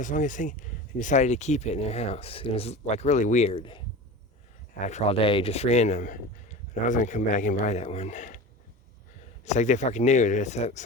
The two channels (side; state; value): both; normal; correlation 0.32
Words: the longest thing, and decided to keep it in their house. It was like really weird. After all day, just random. But I was going to come back and buy that one. It's like they fucking knew that it's